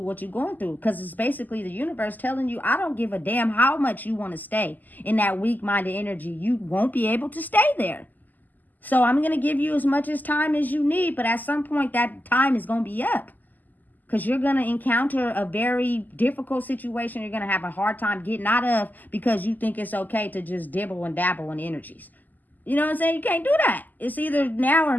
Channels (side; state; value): right; late; 0.084 ms